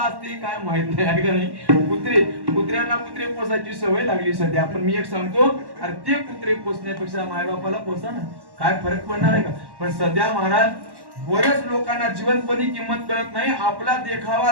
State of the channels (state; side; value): late; left; 1.1 ms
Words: काय माहित नाही, आहे का नाही? कुत्र्यांना कुत्रे पोसायची सवय लागली सध्या. पण मी एक सांगतो, अरे ते कुत्रे पोसण्यापेक्षा मायबापाला पोसा ना, काय फरक पडणार आहे का? पण सध्या महाराज बऱ्याच लोकांना जिवंतपणी किंमत कळत नाही. आपला देखावा